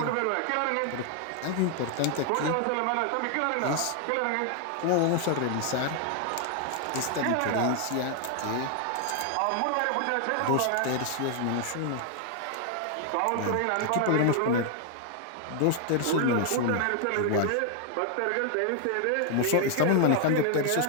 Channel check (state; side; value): different; both; correlation 0.00